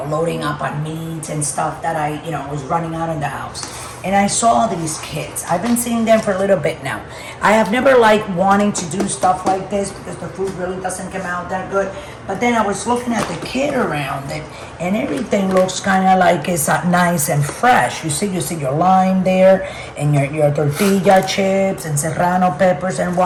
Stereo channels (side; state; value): both; identical; correlation 1.00